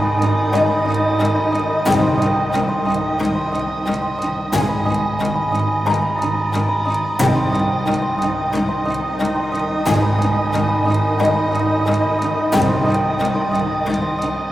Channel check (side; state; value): both; normal; correlation 0.92